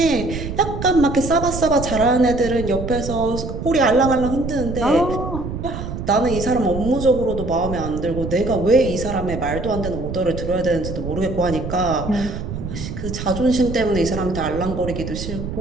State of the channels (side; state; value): right; noise; rumble, 7 dB below the sound